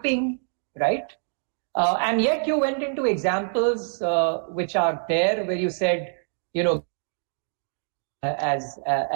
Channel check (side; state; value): left; silent; digital silence